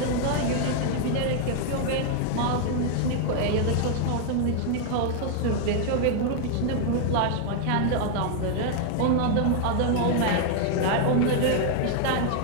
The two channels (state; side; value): different; both; correlation 0.00